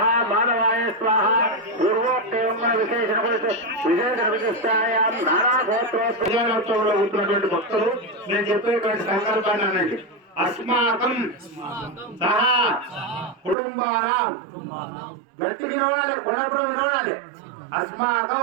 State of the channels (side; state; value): left; drops out; at 13.6 s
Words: माधवाय स्वाहा పూర్వోక్తేమ విశేషణ విశిష్టాయాం నారాగోత్రోత్సవంలో ఉంటున్నటువంటి భక్తులు నేను చెప్పేటువంటి సంకల్పాన్ని అనండి. అస్మాకం సహా కుటుంబానాం గట్టిగా వినవాలి, కొనప్పుడు వినవాలి.